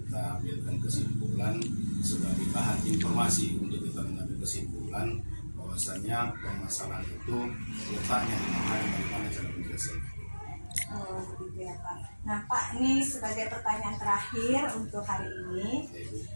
ambilkan kesimpulan sebagai bahan informasi untuk kita mengambil kesimpulan bahwasannya permasalahan itu letaknya di mana dan bagaimana cara menyelesaikan. Oh, begitu ya Pak. Nah Pak, ini sebagai pertanyaan terakhir untuk hari ini, Ya, Ibu.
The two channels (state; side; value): inverted; both; correlation -1.00